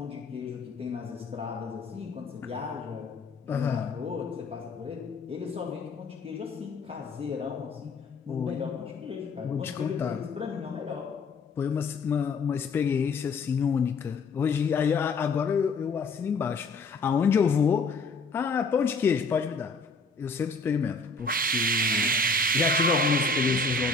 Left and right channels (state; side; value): quieter; right; 3.7 dB